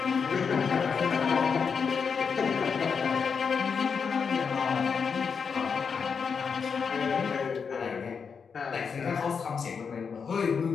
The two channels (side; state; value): right; quieter; 6.0 dB